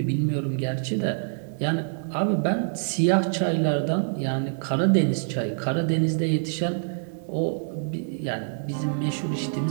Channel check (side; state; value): left; silent; digital silence